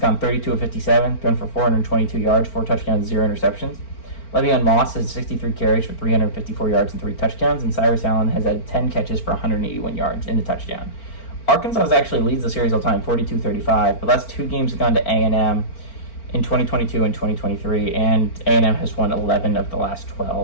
gone 32 of 57, thrown for 422 yards, 4 touchdowns, 0 interceptions. Le'Veon Moss has 63 carries for 354 yards and 3 touchdowns, and Cyrus Allen has had 10 catches for 181 yards and a touchdown. Arkansas actually leads the series all time, 42-35, but last 2 games have gone to A&M in 2022 and 2023, and A&M has won 11 of the last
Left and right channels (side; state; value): right; late; 4.4 ms